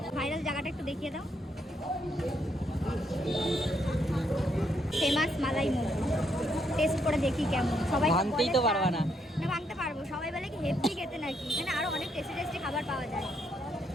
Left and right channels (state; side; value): normal; both; correlation 0.75